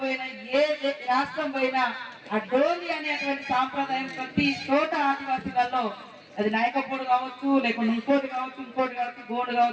పోయినా, ఏ రాష్ట్రం పోయినా ఆ డోలి అనేటువంటి సాంప్రదాయం ప్రతి చోట ఆదివాసీలలో అది నాయకపోడు కావచ్చు, లేకుంటే ఇంకోటి కావచ్చు, గోండు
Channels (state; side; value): identical; both; correlation 1.00